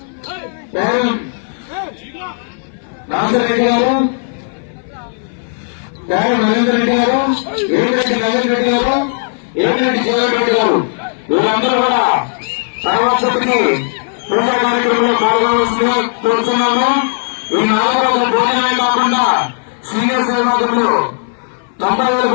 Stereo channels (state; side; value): silent; right; 59 dB below the other